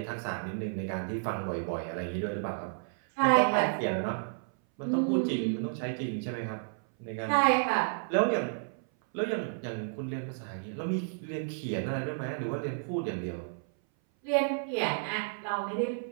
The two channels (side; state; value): left; silent; 57 dB below the other